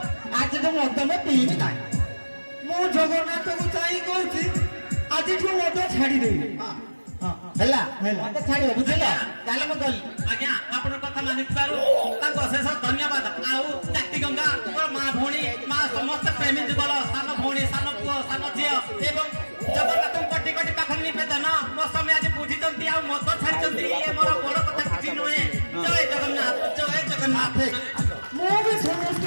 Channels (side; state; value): both; inverted; correlation -1.00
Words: ଆଜିଠୁ ମୁଁ ଅଦମ ପିଇବି ନାହିଁ। ମୁଁ ଜଗନ୍ନାଥକୁ ଚାହିଁ କହୁଛି ଆଜିଠୁ ମଧ୍ୟ ଛାଡ଼ିଦେବି। ହେଲା ମତେ ଛାଡ଼ିବ ବୁଝିଲ? ତାହେଲେ ମୁଁ ଗଲି। ଆଜ୍ଞା ଆପଣଙ୍କ କଥା ମାନିଥିବାରୁ ତାଙ୍କୁ ଅଶେଷ ଧନ୍ୟବାଦ। ଆଉ ଜାତି ଗଙ୍ଗା ମା ଭଉଣୀ ମା ସମସ୍ତ ପ୍ରେମୀ ଯୁଗଳ ସାନ ଭଉଣୀ ସାନ ପୁଅ ସାନ ଝିଅ ଏବଂ ଜଗନ୍ନାଥଙ୍କୁ କୋଟି କୋଟି ପାଖରେ ନିବେଦନ ମୋ ସ୍ୱାମୀ ଆଜି ବୁଝିଛନ୍ତି ଆଉ ମତ ଛାଡ଼ିଛନ୍ତି। ଇଏ ମୋର ବଡ଼ କଥା କିଛି ନୁହେଁ। ଜୟ ଜଗନ୍ନାଥ ଜୟ ଜଗନ୍ନାଥ। ମୁଁ ବି